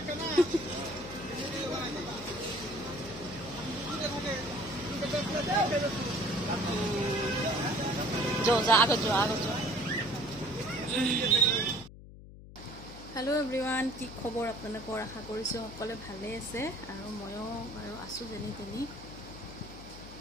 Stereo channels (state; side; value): noise; left; hum, 16 dB below the sound